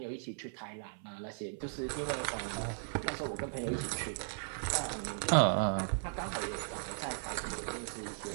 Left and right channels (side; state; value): left; silent; 53 dB below the other